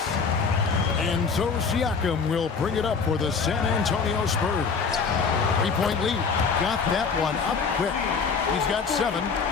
And so Siakam will bring it up for the San Antonio Spurs. 3-point lead. Got that one up quick. He's got 7.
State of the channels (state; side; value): quieter; right; 5.4 dB